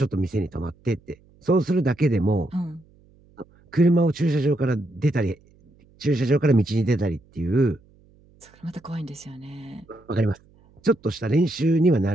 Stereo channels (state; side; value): noise; right; hum, 30 dB below the sound